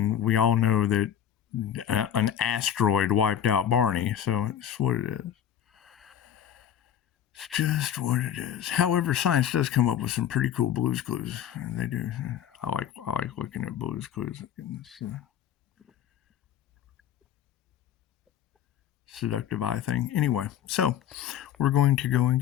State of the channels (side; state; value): right; quieter; 9.9 dB